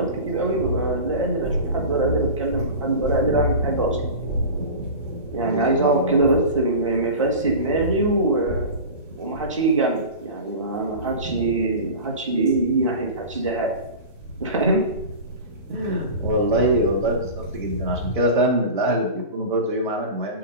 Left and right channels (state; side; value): inverted; both; correlation -0.31